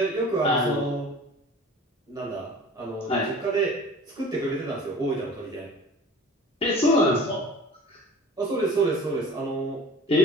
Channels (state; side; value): normal; both; correlation 0.42